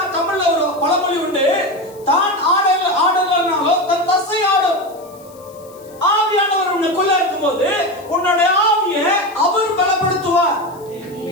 தமிழ்ல ஒரு பழமொழி உண்டு, தான் ஆடலனாலும் தன் தசை ஆடும். ஆவியானவர் உனக்குள்ள இருக்கும்போது உன்னுடைய ஆவியை அவர் பலப்படுத்துவார்.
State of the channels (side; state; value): left; noise; hiss, 25 dB below the sound